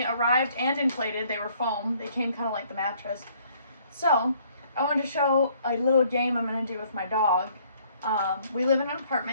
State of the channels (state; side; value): inverted; both; correlation -0.62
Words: arrived and inflated. They were foam. They came kind of like the mattress. So I wanted to show a little game I'm going to do with my dog. We live in an